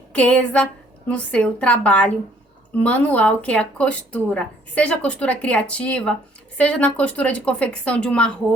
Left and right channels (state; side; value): normal; both; correlation 0.61